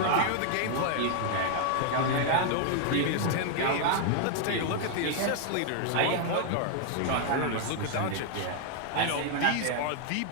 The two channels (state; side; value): different; both; correlation 0.00